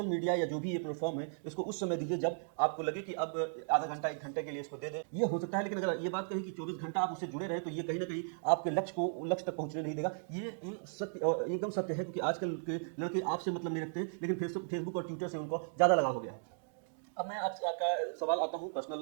मीडिया या जो भी ये प्लेटफॉर्म है इसको उस समय दीजिए जब आपको लगे कि अब आधा घंटा 1 घंटे के लिए इसको दे दें, ये हो सकता है। लेकिन अगर ये बात कही कि 24 घंटा आप उससे जुड़े रहे तो ये कहीं ना कहीं आपके लक्ष्य तक पहुंचने नहीं देगा। ये एकदम सत्य है, क्योंकि आजकल के लड़के आपसे मतलब नहीं रखते हैं, लेकिन फेसबुक और ट्विटर से उनको ज़्यादा लगाव हो गया है। अब मैं आपका सवाल आता हूँ,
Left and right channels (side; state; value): left; silent; digital silence